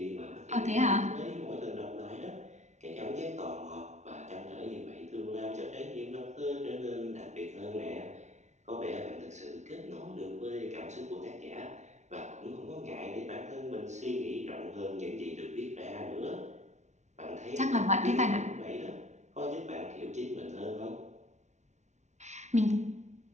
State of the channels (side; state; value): left; late; 0.33 ms